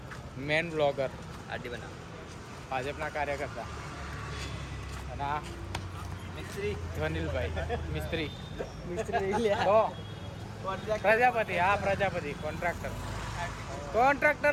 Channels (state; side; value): identical; both; correlation 1.00